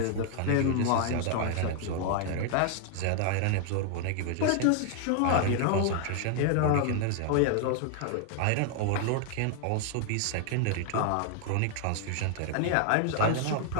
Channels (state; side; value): different; both; correlation 0.00